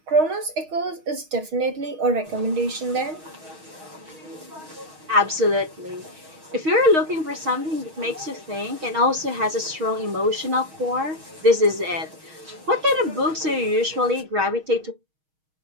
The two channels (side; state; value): left; late; 6.4 ms